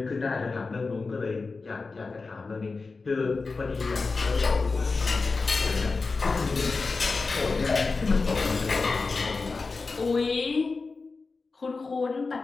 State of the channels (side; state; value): right; quieter; 4.1 dB